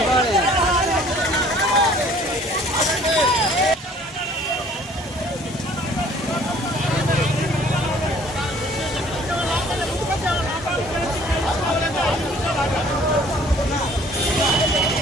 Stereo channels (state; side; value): normal; both; correlation 0.55